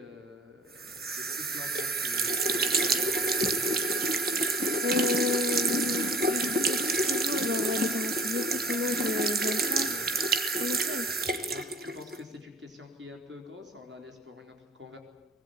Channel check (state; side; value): normal; both; correlation 0.48